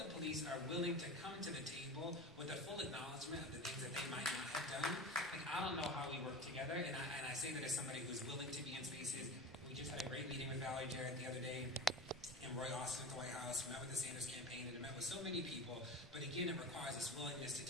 police are willing to come to the table with a full acknowledgement of the things that they might not have done, like, I don't know how we work together. And I say that as somebody who's willing to be in spaces. We just had a great meeting with Valerie Jarrett the other day, and Roy Austin at the White House. We met with the Sanders campaign, and met with so many people. But again, it requires this willingness to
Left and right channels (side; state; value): both; normal; correlation 0.30